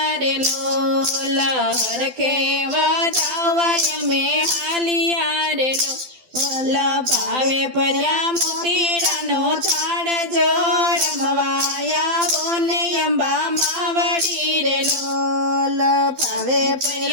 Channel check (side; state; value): left; late; 12 ms